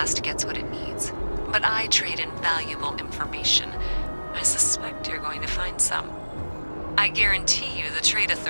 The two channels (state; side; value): inverted; both; correlation -1.00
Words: gets what it needs, but I trade in valuable information. I suspect you're going to find some. I guarantee you the Trade